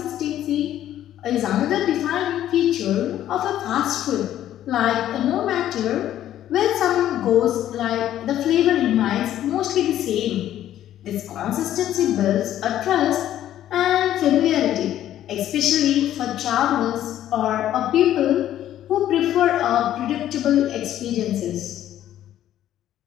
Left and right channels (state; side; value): quieter; right; 12.0 dB